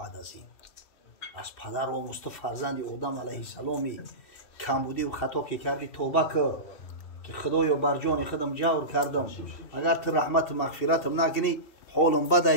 از این از پدر آموز تو فرزند آدم علیه السلامی کمبودی و خطا که کردی توبه که خدایا بر جان خودم جور کردم اگر تو رحمت مغفرتم نکنی حالم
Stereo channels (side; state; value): right; late; 2.7 ms